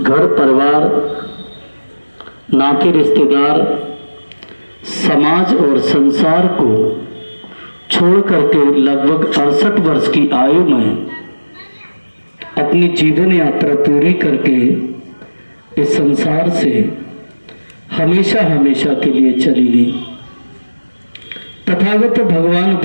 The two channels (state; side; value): inverted; both; correlation -1.00